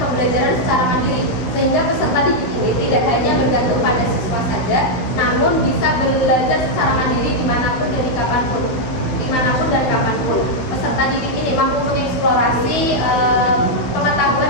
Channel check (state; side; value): late; right; 15 ms